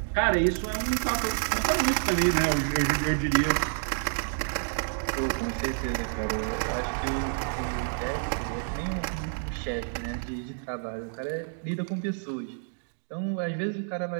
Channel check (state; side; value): silent; left; digital silence